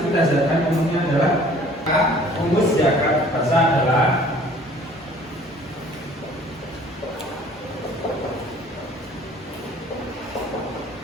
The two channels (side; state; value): both; normal; correlation 0.52